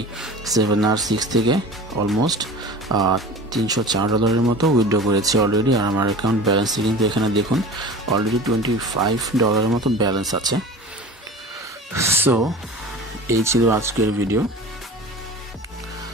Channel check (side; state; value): both; normal; correlation 0.37